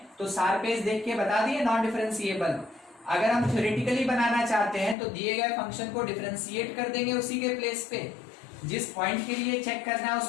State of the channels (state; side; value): drops out; right; at 5.0 s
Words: तो सारफेस देख के बता दिए नॉन डिफरेंशिएबल। अगर हम थ्योरेटिकली बनाना चाहते हैं तो दिए गए फंक्शन को डिफरेंशिएट कर देंगे उसी के प्लेस पे, जिस पॉइंट के लिए चेक करना है